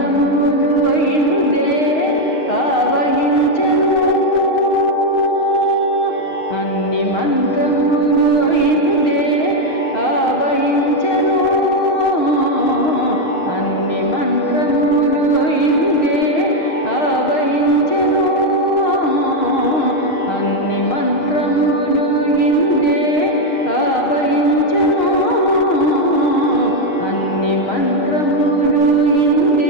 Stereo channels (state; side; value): late; right; 6.5 ms